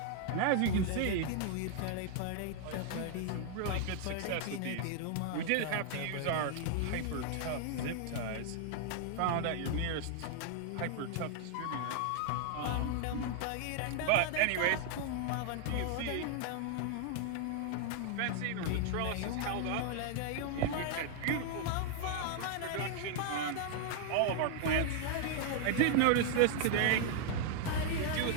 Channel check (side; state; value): both; different; correlation 0.00